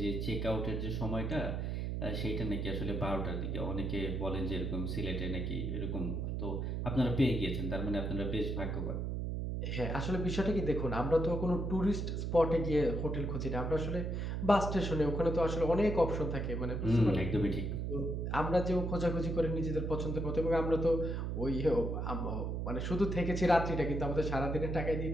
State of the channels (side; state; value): right; noise; hum, 2 dB below the sound